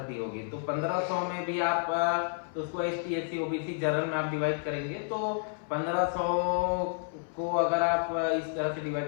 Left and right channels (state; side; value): silent; right; 57 dB below the other